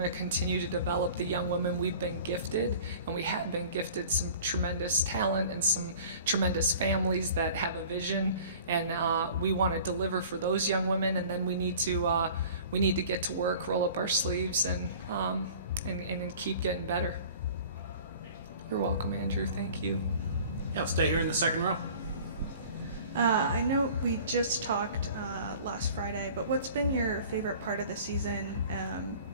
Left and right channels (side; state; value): both; inverted; correlation -0.45